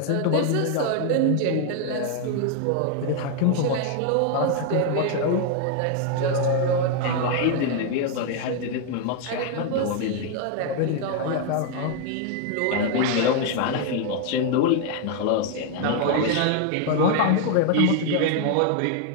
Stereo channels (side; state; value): both; different; correlation 0.00